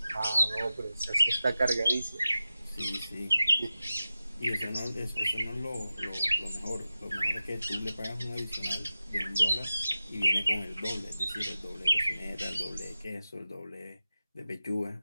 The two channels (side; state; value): both; inverted; correlation -0.92